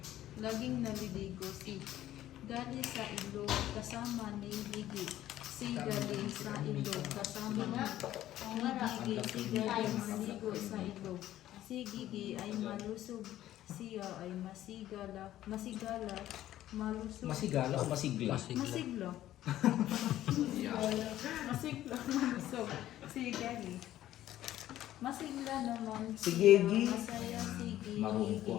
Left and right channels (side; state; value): right; quieter; 13.3 dB